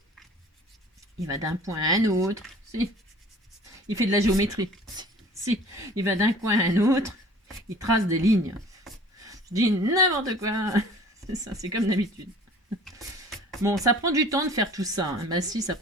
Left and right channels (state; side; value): normal; both; correlation 0.48